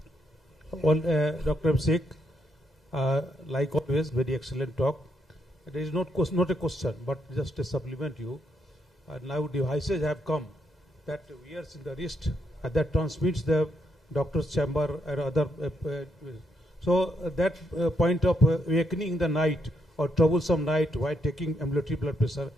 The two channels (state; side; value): normal; both; correlation 0.77